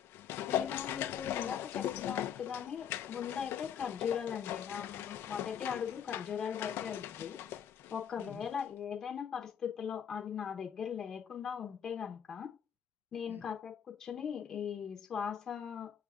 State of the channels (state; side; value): quieter; right; 8.5 dB